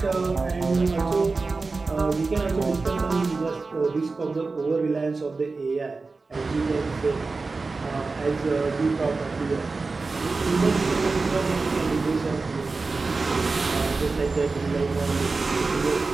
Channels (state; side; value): quieter; left; 3.9 dB